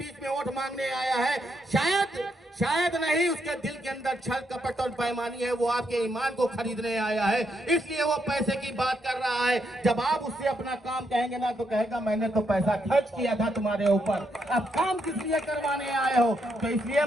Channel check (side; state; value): both; normal; correlation 0.78